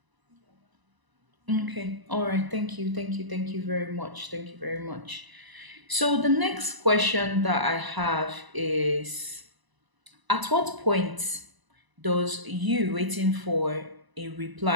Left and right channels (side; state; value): left; late; 1.0 ms